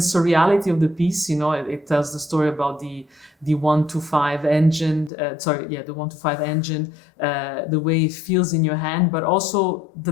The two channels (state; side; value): drops out; right; at 5.1 s